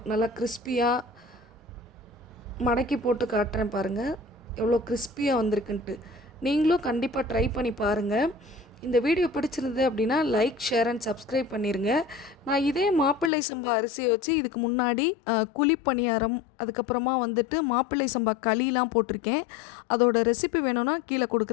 நல்லா கிறிஸ்பியாக மடக்கி போட்டு காட்டுறேன் பாருங்கள், எவ்வளோ கிறிஸ்பியாக வந்திருக்குன்ட்டு. நீங்களும் கண்டிப்பாக ட்ரை பண்ணி பாருங்கள். இந்த வீடியோ பிடிச்சிருந்தது அப்படின்னா லைக், ஷேர் அண்ட் சப்ஸ்கிரைப் பண்ணிடுங்க. நான் இதே மாப்பிள்ளை சம்பா அரிசியை வச்சு இதுக்கு முன்னாடி குழிப்பணியாரம், அதுக்கப்புறமா மாப்பிள்ளை சம்பா களிலாம் போட்டிருக்கேன். அதோட ரெசிபி வேணும்னா கீழே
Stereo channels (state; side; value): drops out; right; at 13.3 s